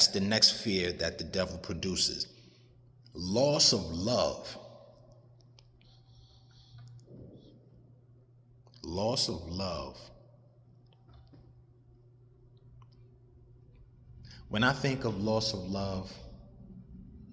the next fear that the devil produces. Loss of love. Loss of love. When I think of loss of love,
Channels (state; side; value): identical; both; correlation 1.00